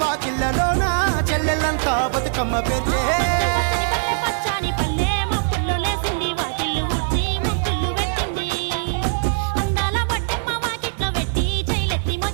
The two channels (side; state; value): left; silent; digital silence